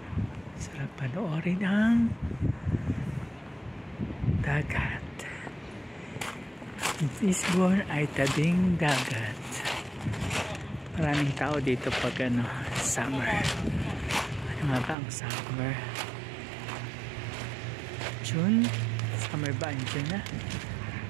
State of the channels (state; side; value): drops out; left; at 15.0 s